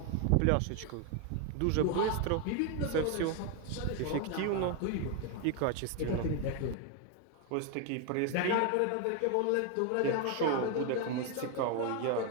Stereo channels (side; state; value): both; different; correlation 0.01